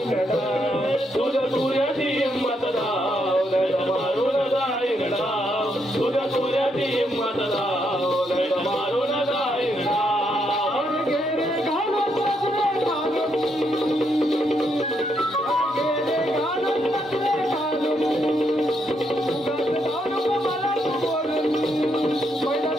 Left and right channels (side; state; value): both; normal; correlation 0.77